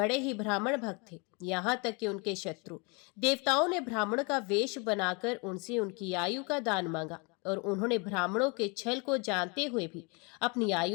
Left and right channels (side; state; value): right; quieter; 31.0 dB